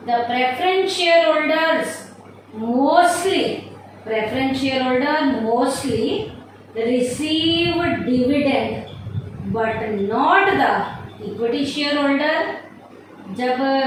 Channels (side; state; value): both; identical; correlation 1.00